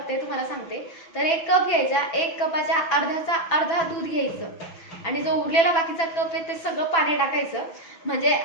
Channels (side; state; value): right; late; 6.0 ms